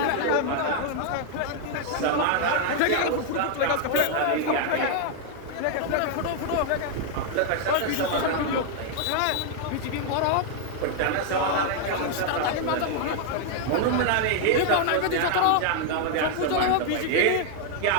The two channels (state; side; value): different; both; correlation 0.00